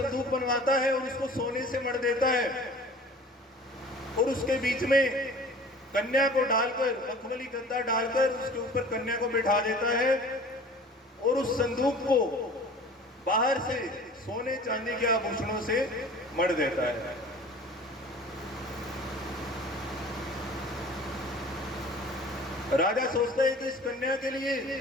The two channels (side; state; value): both; normal; correlation 0.45